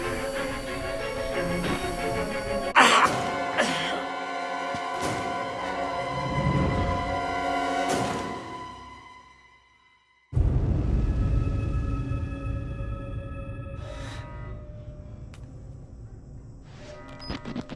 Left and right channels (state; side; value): identical; both; correlation 1.00